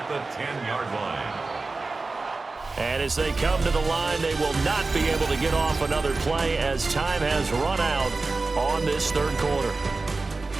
the 10-yard line. And as they come to the line, they will not be able to get off another play as time has run out on this third quarter.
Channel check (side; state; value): left; quieter; 3.6 dB